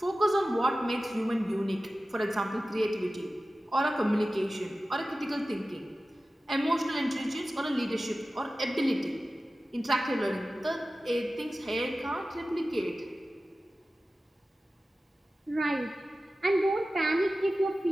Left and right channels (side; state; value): both; normal; correlation 0.95